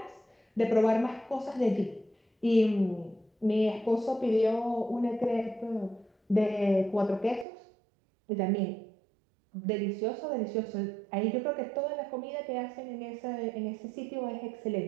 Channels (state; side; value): drops out; left; at 7.5 s